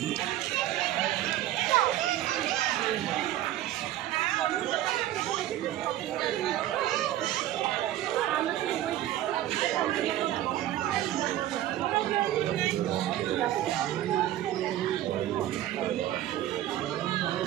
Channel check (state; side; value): quieter; left; 13.4 dB